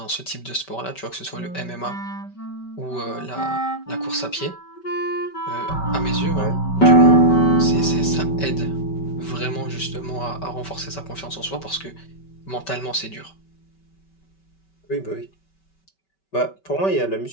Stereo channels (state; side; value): late; right; 5.2 ms